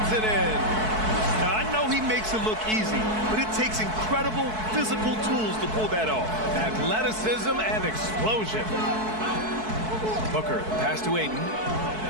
it in. Now, I know he makes it look easy, but it takes incredible physical tools to pull that off. Athleticism and explosion. Booker, pass to Ayton.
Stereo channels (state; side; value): late; left; 4.6 ms